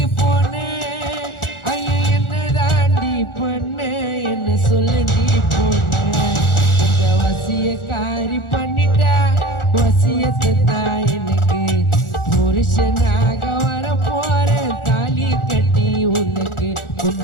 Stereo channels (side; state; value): right; late; 1.4 ms